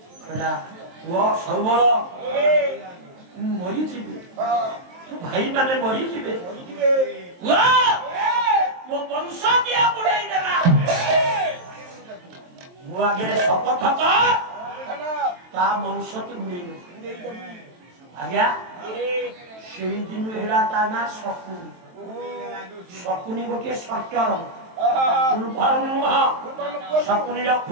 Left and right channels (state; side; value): late; left; 23 ms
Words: সবল মরিଯିবে ভাই মানে মরিଯିবে ମୋ ବଂଶ ଦିଆ ବୁଡେଇ ଦେଲା ମୁଁ ଆଗରେ ଶପଥ ତା ବଂଶ ତୁ ବୁଡେଇ ଆଜ୍ଞା ସେଇ ଦିନ ହେଲା ତା ନା ଶକୁନି ଶକୁନି ଗୋଟିଏ ସର୍ଟର ଫୁଲ୍ ଫର୍ମ ନୁହଁ ଶକୁନିର